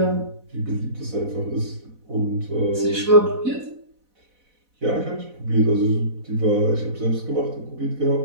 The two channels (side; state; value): left; late; 4.0 ms